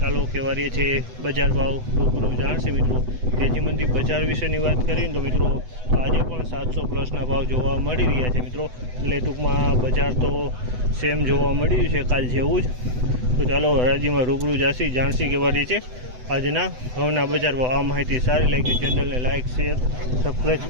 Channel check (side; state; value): left; late; 8.0 ms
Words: કહેવા રહીએ છે બજાર ભાવ રૂબરૂ જાણશે મિત્રો। તેજી મંદી બજાર વિશેની વાત કરીને તો મિત્રો તો આજે પણ 700 પ્લસના ભાવ જોવા મળી રહ્યા છે મિત્રો। એટલે ટૂંકમાં બજાર તો સેમ જોવા મળ્યું છે કાલ જેવું જ। તો ચાલો હરાજીમાં રૂબરૂ જાણસી કહેવા રહીએ છે આજના ઘઉંના બજાર ભાવ। આ માહિતી સારી લાગી ચેનલને લાઇક શેર સબસ્ક્રાઈબ